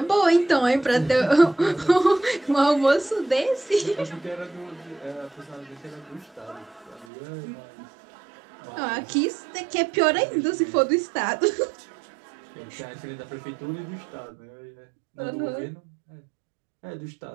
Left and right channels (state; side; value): drops out; left; at 7.1 s